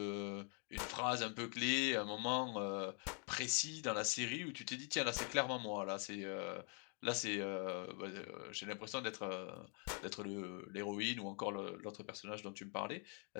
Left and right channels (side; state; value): right; quieter; 39.5 dB